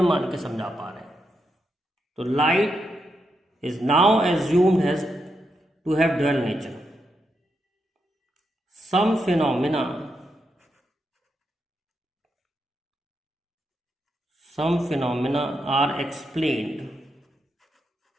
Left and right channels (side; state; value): both; normal; correlation 0.83